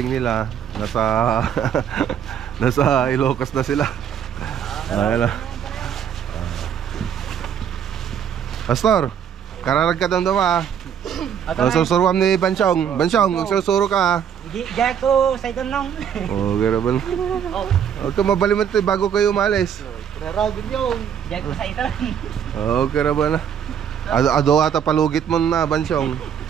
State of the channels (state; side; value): quieter; left; 8.5 dB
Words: nila nasa Ilocos na sila. Ayan. Pastor, kararag ka doon susuruan ni Bansyong. Bansyong, susuro ka Diyan ko sa itong nang. Garaban. Huwag ka mabalimot bago kayo umalis. Kararagin yung diyan ko sa itong. Garaban na. Ado ata palugit mo na, Bansyong.